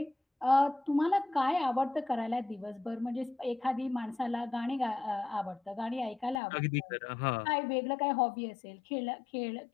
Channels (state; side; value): drops out; right; at 6.4 s